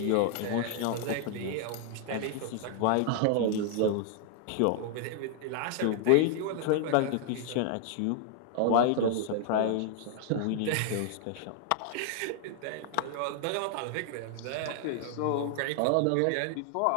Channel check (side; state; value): both; different; correlation 0.00